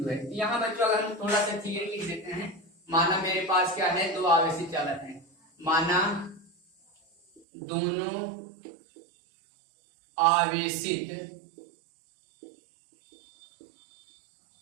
है। यहाँ बच्चों अगर हम थोड़ा सा थियरी लिख देते हैं, माना मेरे पास क्या है, दो आवेशी चालक हैं, माना दोनों आवेशित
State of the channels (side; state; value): left; drops out; at 7.4 s